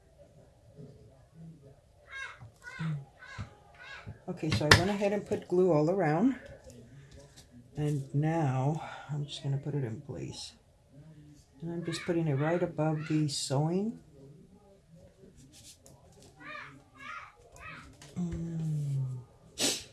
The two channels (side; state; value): both; identical; correlation 1.00